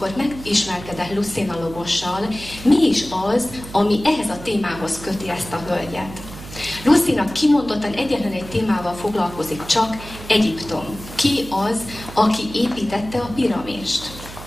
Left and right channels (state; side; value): noise; right; hum, 14 dB below the sound